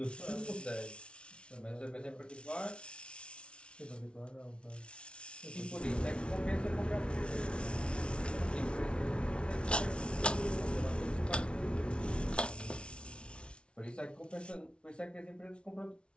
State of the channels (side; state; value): right; late; 0.058 ms